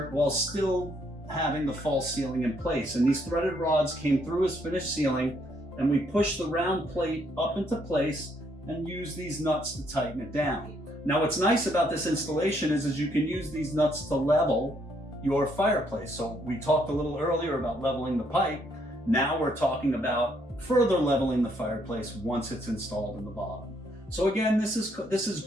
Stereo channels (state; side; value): normal; both; correlation 0.71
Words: while still having the false ceiling in place. And these threaded rods came through his finished ceiling, and we pushed the round plate up into place and used these nuts to tighten it down. Now what's nice about this installation is you can use these nuts to level your fireplace. So we talked a little earlier about leveling the pipe. Now we're talking about further leveling the fireplace once it's installed in the bottom. So again, this is